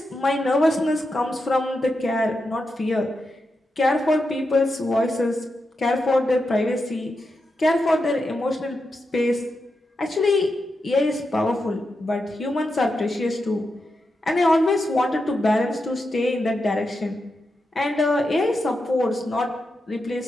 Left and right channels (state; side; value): normal; both; correlation 0.87